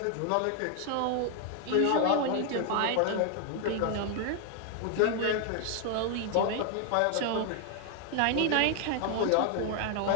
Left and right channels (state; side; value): different; both; correlation 0.00